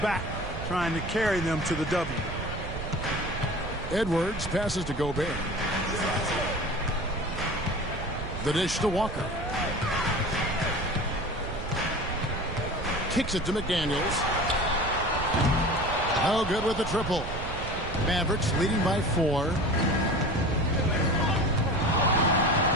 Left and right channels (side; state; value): right; noise; rumble, 7 dB below the sound